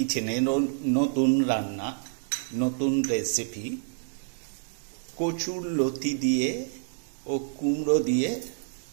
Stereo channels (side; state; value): left; silent; digital silence